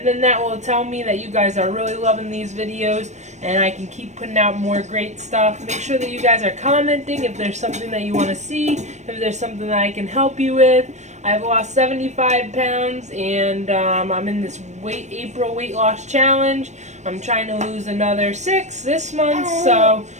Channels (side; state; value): left; late; 0.34 ms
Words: then that will tell me that you guys are really loving these videos and I can keep putting out more great stuff. Make sure that you guys are commenting if there's something that you want to see, if there's something that I can help you with. I've lost 75 pounds and I'm in this April weight loss challenge. I'm trying to lose another 6 this month, so